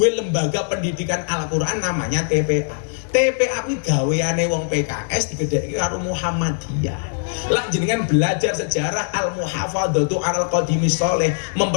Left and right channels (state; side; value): silent; right; 65 dB below the other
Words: lembaga pendidikan Al-Qur'an namanya TPA. TPA kuwi gaweane wong PKS digedheki karo Muhammadiyah. Lah jenengan belajar sejarah al-muhafadzatu alal qadimi sholeh,